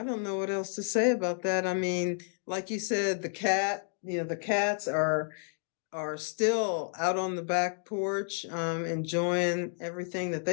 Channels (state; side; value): silent; right; 57 dB below the other